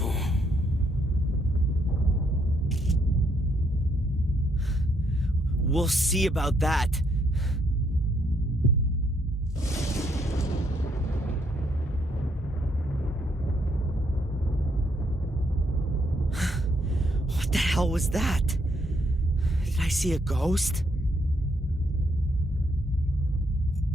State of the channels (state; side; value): normal; both; correlation 0.73